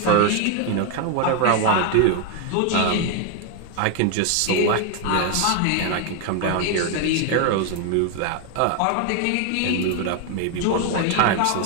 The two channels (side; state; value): both; different; correlation 0.01